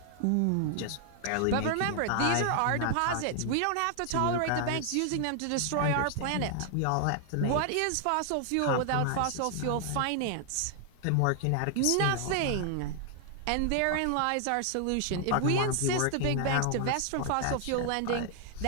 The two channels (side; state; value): both; different; correlation 0.00